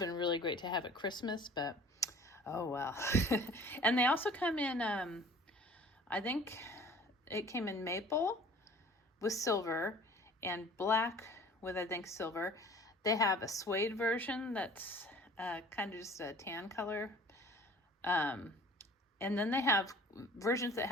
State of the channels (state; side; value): normal; both; correlation 0.48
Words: really great to have at Christmas, but oh well. And they also come in, I think it came in maple with silver and black with, I think, silver. They have a suede version that's kind of just a tan color. And then they have versions that